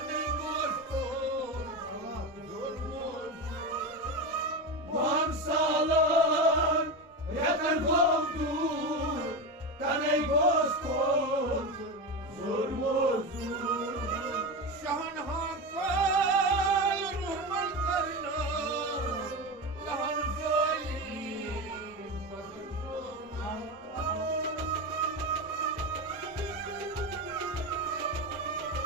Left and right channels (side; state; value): both; normal; correlation 0.19